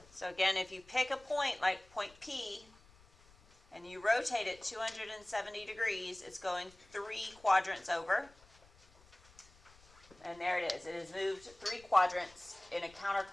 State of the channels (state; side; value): noise; left; rumble, 27 dB below the sound